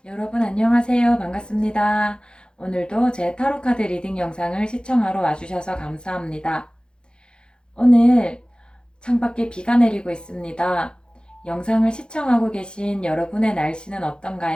여러분 안녕하세요. 반갑습니다. 오늘도 제 타로카드 리딩 영상을 시청하러 와주셔서 감사합니다. 오늘 창밖에 비가 내리고 있습니다. 영상을 시청하고 계신 여러분의 날씨는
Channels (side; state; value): right; late; 0.049 ms